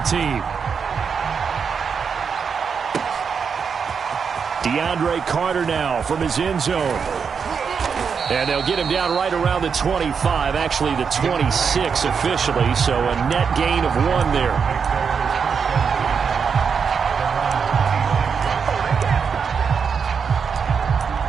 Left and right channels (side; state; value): left; quieter; 6.2 dB